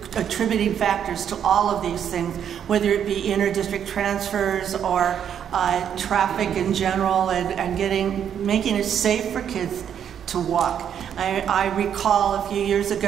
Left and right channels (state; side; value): quieter; left; 8.8 dB